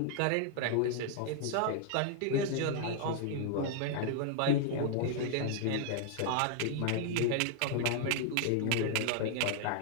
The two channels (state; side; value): different; both; correlation 0.00